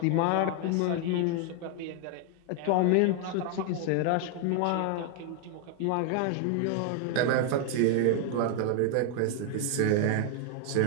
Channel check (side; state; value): both; different; correlation 0.00